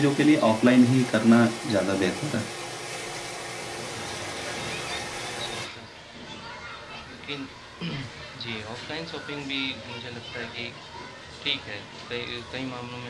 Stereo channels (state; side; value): identical; both; correlation 1.00